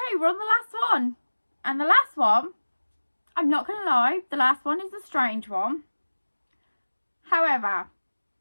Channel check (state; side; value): inverted; both; correlation -1.00